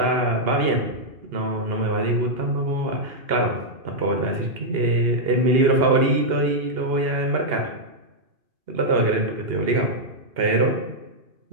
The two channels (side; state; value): left; late; 2.8 ms